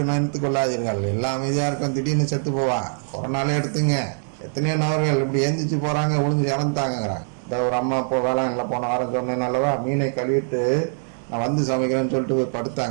நினைத்துக் கொள்ளாதீர்கள். எல்லாம் அமைதியா இருக்கும், திடீர்னு செத்து போவான். கொரோனாலே எடுத்துங்க, எத்தனையோ நபர்கள் இப்படி எந்திரிச்சு போறாங்க, ஒளிஞ்சு இறந்துட்டாங்கிறாங்க. இந்த ஒரு அம்மா வேளாண்ல போன வாரம் சொன்னேன் அல்லவா, மீனை கழுவிட்டு நான் சமைக்கிறேன்னு சொல்லிட்டு போய்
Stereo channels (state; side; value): silent; left; digital silence